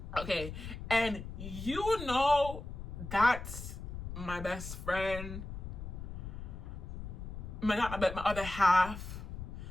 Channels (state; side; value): noise; left; rumble, 8 dB below the sound